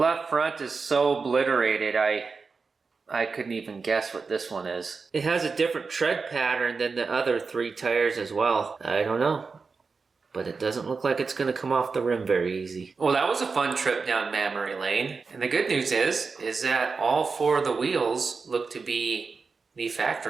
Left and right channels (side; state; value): left; quieter; 4.7 dB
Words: front is so obliterated, I couldn't even guess what this one is. It has a different tread pattern than the other three tires as well. I don't know, but it doesn't look like it's going to come off the rim very easy. Well, that was a fun trip down memory lane. And the good news is that all four of the wheels look to be the